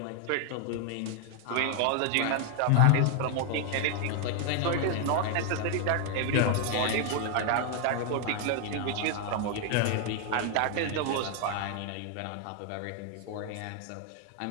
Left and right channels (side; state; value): both; different; correlation 0.01